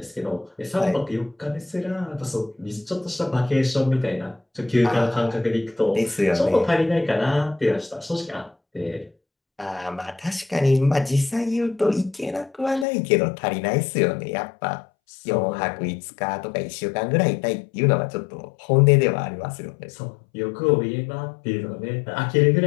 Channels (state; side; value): drops out; right; at 12.9 s